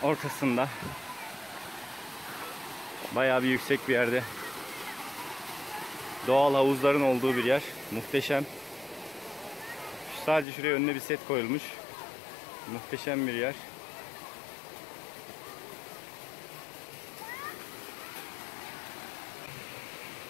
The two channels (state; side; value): drops out; right; at 10.5 s